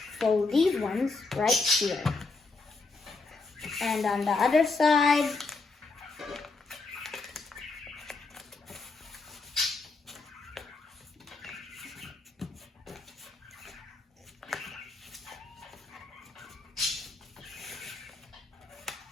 fold these ones right here. And on the other side,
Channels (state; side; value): quieter; right; 3.8 dB